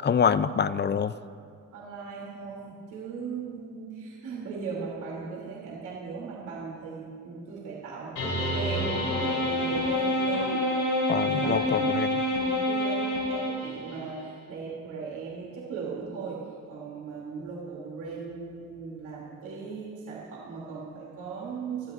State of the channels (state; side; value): normal; both; correlation 0.09